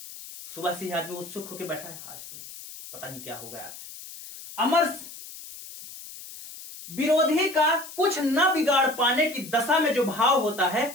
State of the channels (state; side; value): noise; left; hiss, 14 dB below the sound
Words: सुबह से ही आदमी उत्सुक होकर बैठा है, आज तो पता नहीं क्या होगा यार। अमर्ष, विरोधी का कुछ न बिगाड़ पाने की दशा में जो भाव होता है